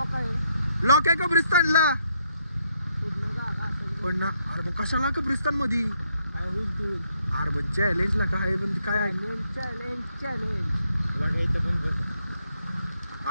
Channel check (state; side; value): inverted; both; correlation -0.75